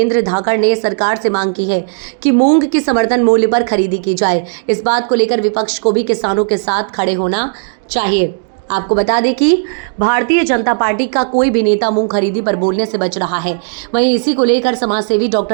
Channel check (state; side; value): silent; left; digital silence